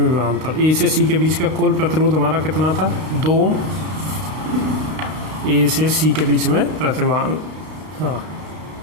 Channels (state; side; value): late; left; 32 ms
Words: विभवांतर, A से C के बीच का कुल प्रतिरोध हमारा कितना था, 2 ओम। A से C के बीच में प्रतिवान, हाँ,